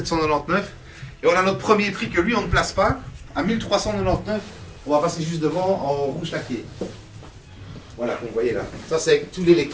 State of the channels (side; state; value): both; identical; correlation 1.00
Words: €. Et on a notre premier prix que lui, on ne place pas, à 1399 €. On va passer juste devant en rouge laqué. Voilà, comme vous voyez là. Ça, c'est tout